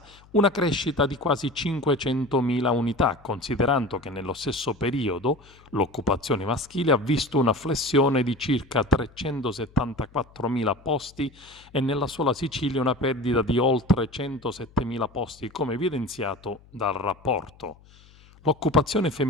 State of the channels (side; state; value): left; noise; hum, 26 dB below the sound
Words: una crescita di quasi 500.000 unità, considerando che nello stesso periodo l'occupazione maschile ha visto una flessione di circa 374.000 posti e nella sola Sicilia una perdita di oltre 107.000 posti, come evidenziato dal rapporto. L'occupazione